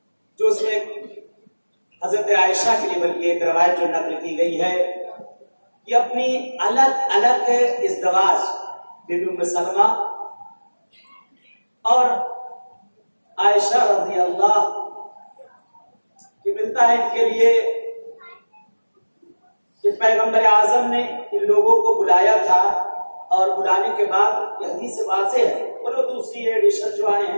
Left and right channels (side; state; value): both; inverted; correlation -1.00